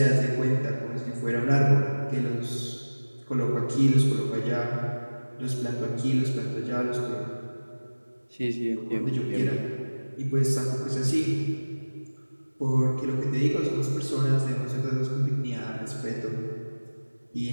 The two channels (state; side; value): inverted; both; correlation -1.00